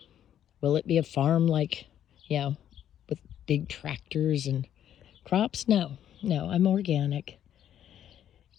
Will it be a farm like, with big tractors and crops? No, I'm organic.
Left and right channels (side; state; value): right; quieter; 10.5 dB